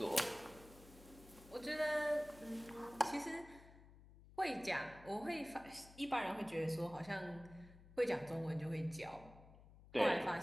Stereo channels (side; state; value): left; noise; hum, 20 dB below the sound